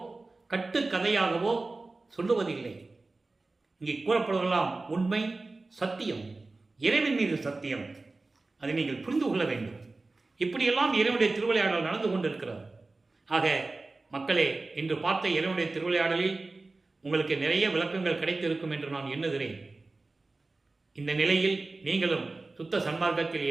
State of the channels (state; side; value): quieter; left; 3.4 dB